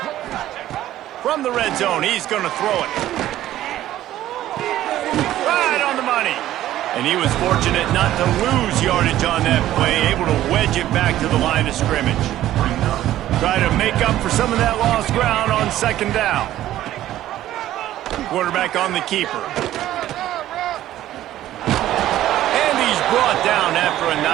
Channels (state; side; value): quieter; left; 13.5 dB